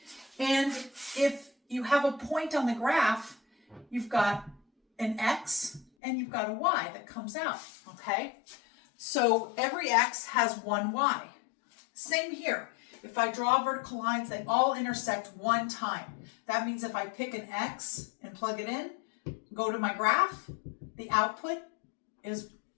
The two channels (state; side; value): drops out; right; at 5.9 s